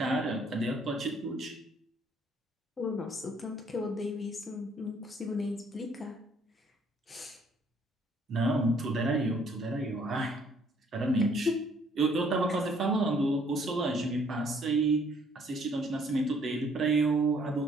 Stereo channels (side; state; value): both; normal; correlation 0.63